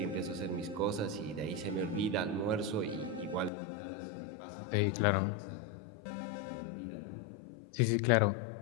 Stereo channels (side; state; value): right; drops out; at 3.5 s